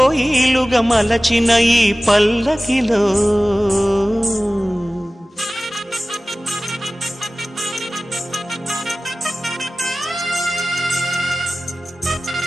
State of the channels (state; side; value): normal; both; correlation 0.97